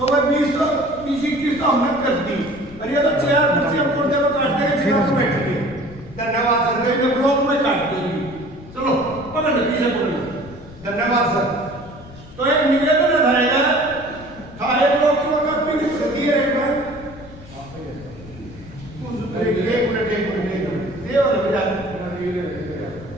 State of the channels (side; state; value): left; noise; rumble, 18 dB below the sound